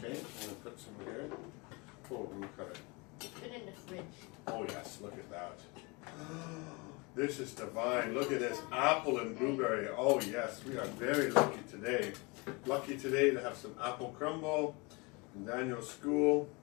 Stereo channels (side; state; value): right; quieter; 27.9 dB